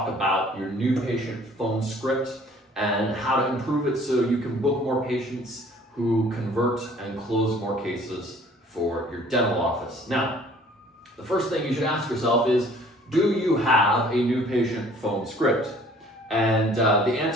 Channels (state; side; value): normal; both; correlation 0.54